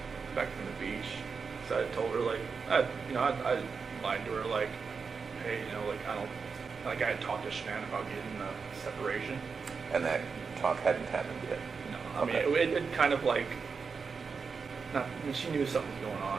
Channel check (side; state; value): left; quieter; 5.3 dB